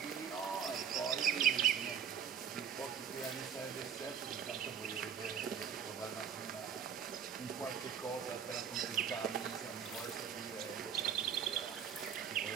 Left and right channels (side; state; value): left; quieter; 7.9 dB